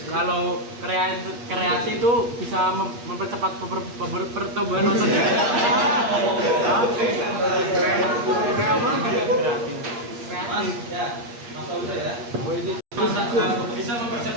kalau kreasi itu bisa mempercepat pertumbuhan otot ya? Mas, ya, Mas Fauza ya. Bisa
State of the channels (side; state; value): left; late; 8.5 ms